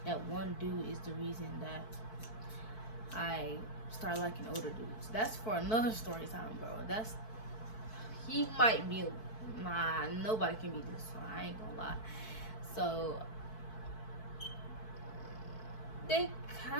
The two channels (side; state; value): right; late; 4.6 ms